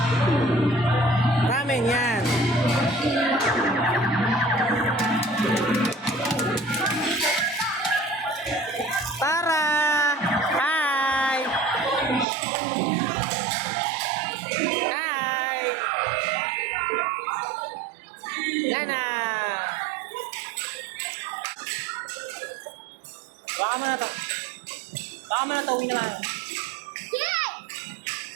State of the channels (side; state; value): left; drops out; at 12.2 s